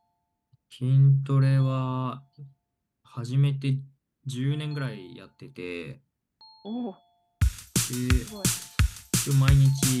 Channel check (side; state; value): both; identical; correlation 1.00